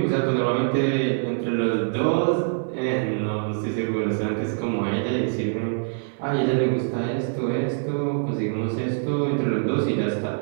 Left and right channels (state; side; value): silent; left; digital silence